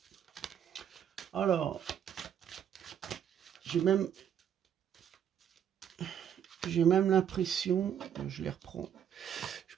Alors, j'ai même l'impression, je les reprends, je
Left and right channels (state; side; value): quieter; left; 9.2 dB